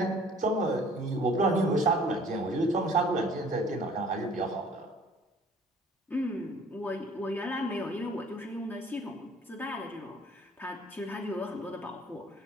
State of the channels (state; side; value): normal; both; correlation 0.53